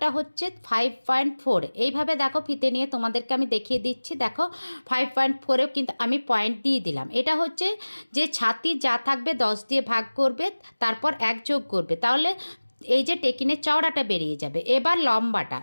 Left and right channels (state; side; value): inverted; both; correlation -1.00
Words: হচ্ছে 5.4। এইভাবে দেখো ফিতে নিয়ে তোমাদেরকে আমি দেখিয়ে দিচ্ছি। দেখো 5.4এও কিন্তু আমি পয়েন্ট দিয়ে দিলাম। এটা হচ্ছে যে ছাতি যা থাকবে 10 দিয়ে ভাগ করবে, তারপর 1 যোগ করবে, তাহলে এই যে টেকিনের চওড়াটা বেরিয়ে যাবে। এবার